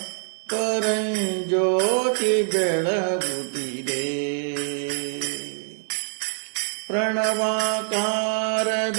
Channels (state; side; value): silent; left; digital silence